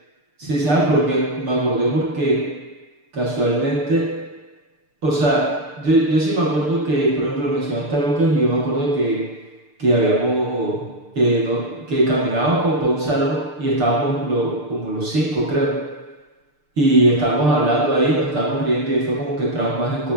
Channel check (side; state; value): left; late; 6.7 ms